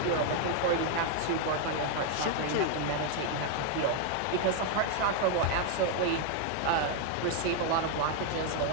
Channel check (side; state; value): both; different; correlation 0.00